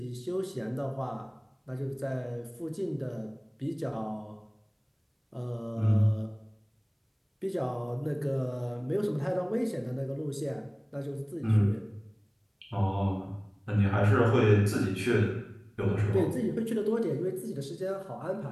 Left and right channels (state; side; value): identical; both; correlation 1.00